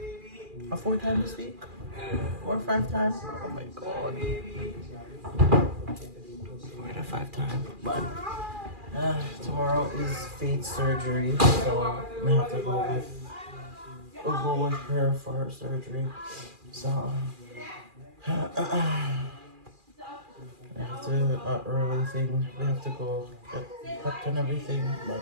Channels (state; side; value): late; left; 2.4 ms